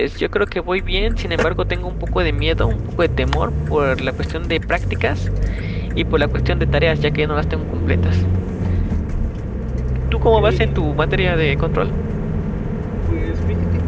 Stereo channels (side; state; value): both; identical; correlation 1.00